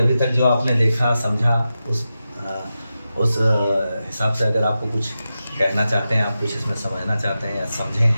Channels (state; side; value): inverted; both; correlation -0.91